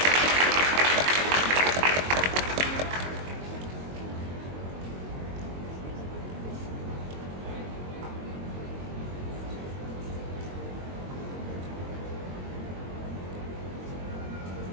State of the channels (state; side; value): late; left; 22 ms